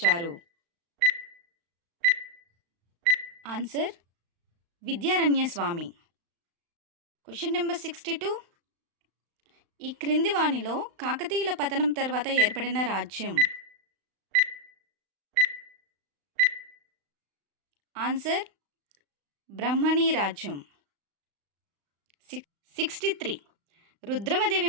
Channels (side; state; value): left; late; 35 ms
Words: Answer Vidyaranya Swami. Question number 62. ఈ క్రింది వానిలో కాకతీయుల పతనం తర్వాత ఏర్పడిన రాజ్యం? ఆన్సర్ బ్రహ్మణీ రాజ్యం. 63. రుద్రమదేవి